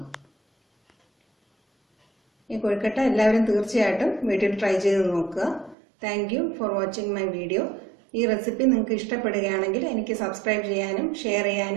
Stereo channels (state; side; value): drops out; left; at 5.8 s